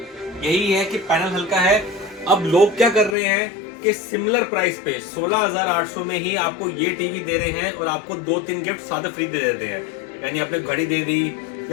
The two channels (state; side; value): drops out; right; at 3.2 s